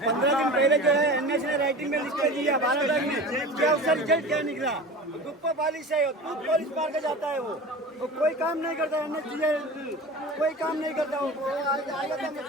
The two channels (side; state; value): both; normal; correlation 0.34